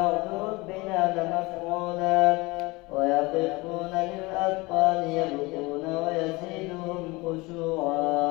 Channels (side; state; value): right; quieter; 23.6 dB